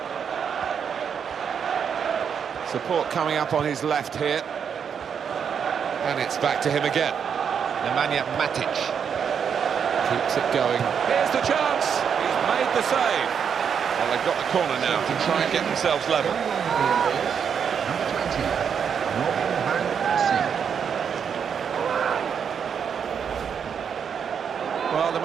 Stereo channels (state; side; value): quieter; left; 7.3 dB